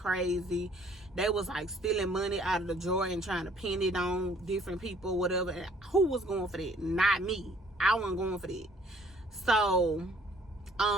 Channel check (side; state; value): both; normal; correlation 0.59